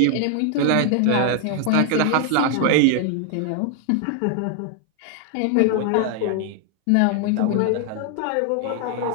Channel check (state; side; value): different; both; correlation 0.00